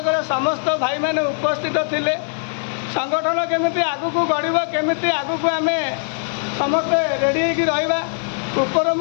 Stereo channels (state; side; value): silent; right; 65 dB below the other